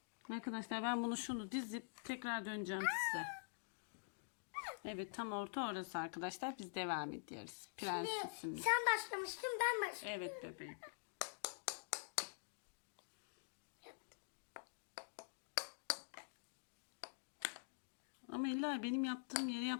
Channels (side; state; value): right; silent; digital silence